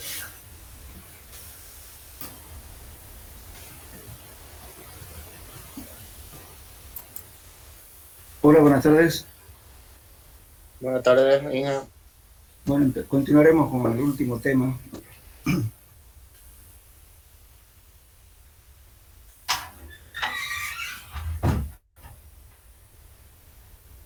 Hola, buenas tardes. Buenas tardes, Inga. Bueno, continuaremos con el último tema.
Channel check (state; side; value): identical; both; correlation 1.00